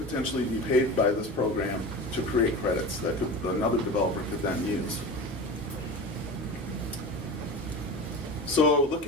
be paid by this program to create credits that another developer could then use. So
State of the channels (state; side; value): normal; both; correlation 0.30